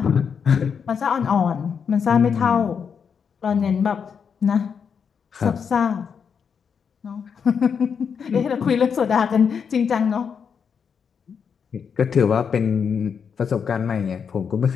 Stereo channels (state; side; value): quieter; right; 6.7 dB